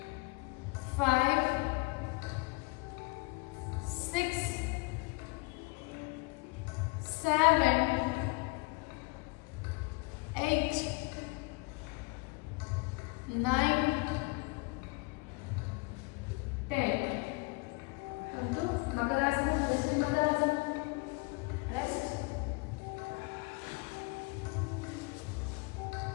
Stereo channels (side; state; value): right; quieter; 28.5 dB